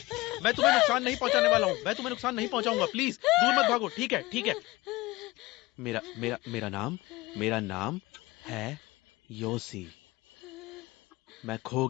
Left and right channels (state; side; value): quieter; right; 20.7 dB